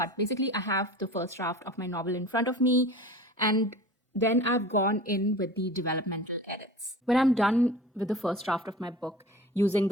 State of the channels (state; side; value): normal; both; correlation 0.39